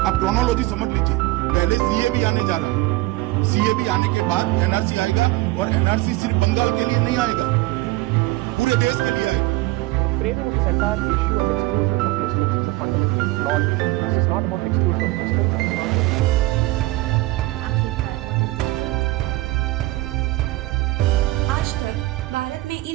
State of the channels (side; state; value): left; quieter; 19.5 dB